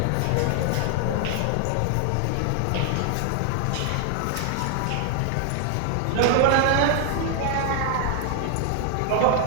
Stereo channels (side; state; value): both; different; correlation 0.00